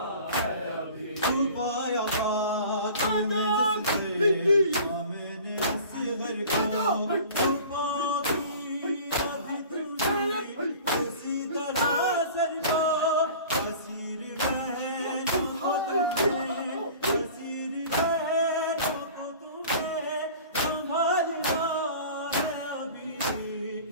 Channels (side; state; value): both; inverted; correlation -0.43